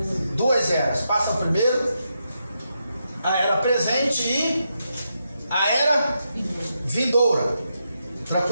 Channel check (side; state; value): both; inverted; correlation -0.84